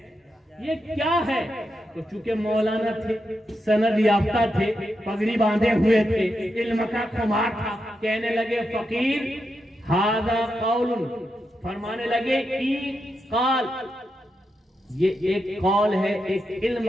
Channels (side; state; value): both; normal; correlation 0.85